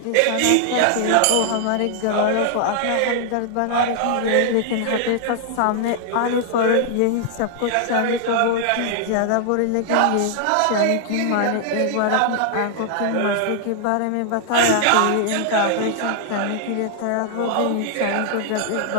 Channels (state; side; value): different; both; correlation -0.01